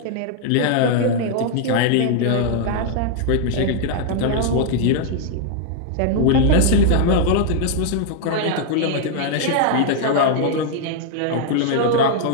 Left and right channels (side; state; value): both; different; correlation 0.00